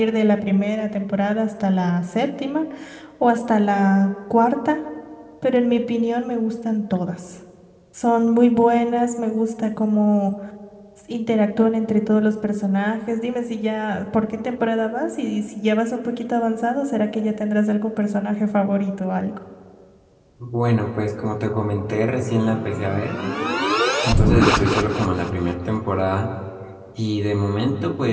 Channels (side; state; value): both; identical; correlation 1.00